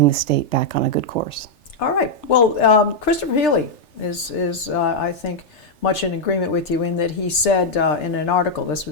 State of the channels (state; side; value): late; right; 3.3 ms